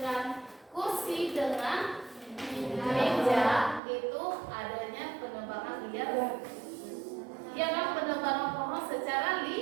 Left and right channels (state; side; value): drops out; left; at 3.8 s